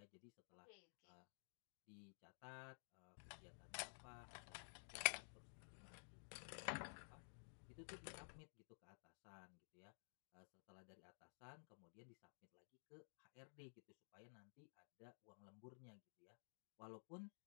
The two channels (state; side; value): silent; right; digital silence